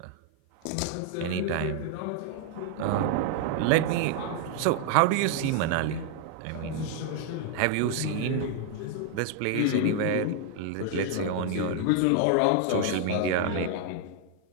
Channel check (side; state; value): both; different; correlation 0.00